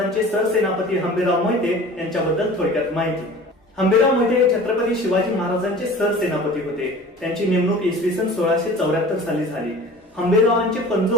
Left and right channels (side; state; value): both; normal; correlation 0.43